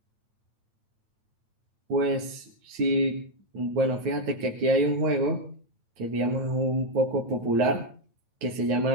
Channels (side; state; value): left; late; 9.0 ms